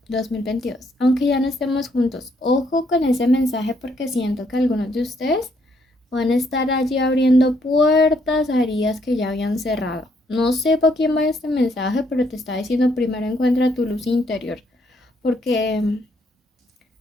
2022, aunque ya no estemos juntos. Ojo con ese mensaje porque siento que algunos de ustedes van a estar allí abriendo puertas a heridas que ya habían cerrado. No sé por quién va este mensaje, pero te está diciendo primero encuentra tu luz interior, porque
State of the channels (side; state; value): both; normal; correlation 0.71